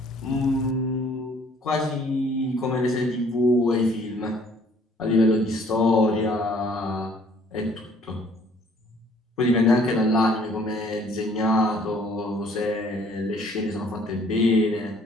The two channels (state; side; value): normal; both; correlation 0.59